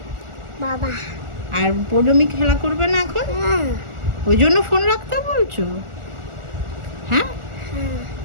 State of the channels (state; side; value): late; left; 1.4 ms